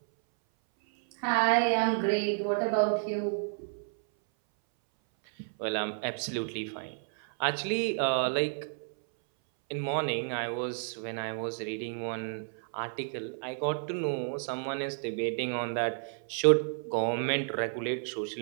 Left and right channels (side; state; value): left; silent; 57 dB below the other